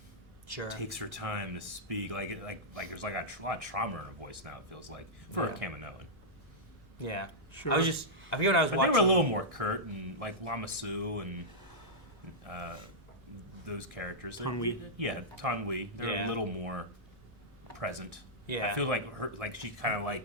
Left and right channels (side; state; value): both; normal; correlation -0.10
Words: takes her time to speak. Like there's like a lot of trauma in her voice now. It feels like for a Kaminoan. Yeah, Sure. I forget what I was But watching. they were a little more curt and like Lamasu and those characters. Tanwi. Yeah, Tanwi. They're Yeah. a little more present. Yeah. I feel like she kind of